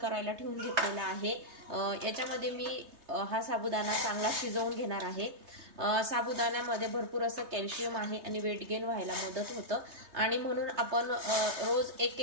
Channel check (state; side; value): late; left; 3.2 ms